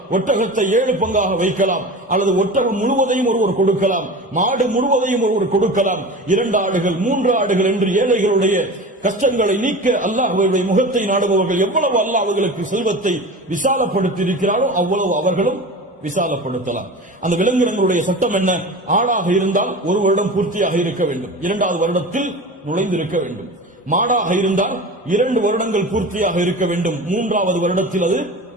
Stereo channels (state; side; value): normal; both; correlation 0.33